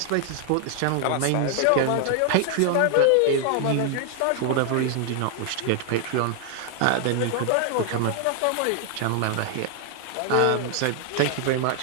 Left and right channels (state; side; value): different; both; correlation 0.00